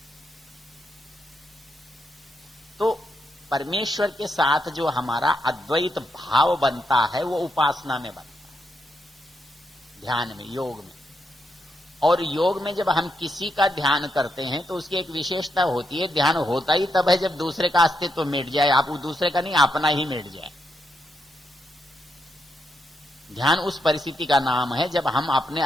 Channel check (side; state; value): both; normal; correlation 0.81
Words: तो परमेश्वर के साथ जो हमारा अद्वैत भाव बनता है वो उपासना में बनता है, ध्यान में, योग में। और योग में जब हम किसी का ध्यान करते हैं तो उसकी एक विशेषता होती है, ध्यान होता ही तब है जब दूसरे का अस्तित्व मिट जाए। आप दूसरे का नहीं, अपना ही मिट जाए। ध्यान उस परिस्थिति का नाम है जब हम अपने